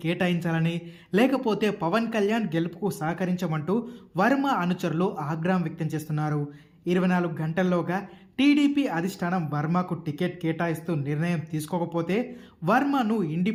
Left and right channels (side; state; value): both; identical; correlation 1.00